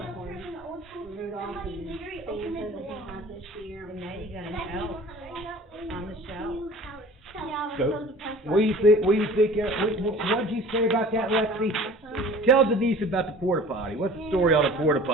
Rudolph and Santa that he had this year. And now you got an elf on the shelf. Yeah, I was So, so depressed. what do you think, what did you say about that, Lexi? Tell Denise about the porta potty. What's the story on the porta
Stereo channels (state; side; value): normal; both; correlation 0.44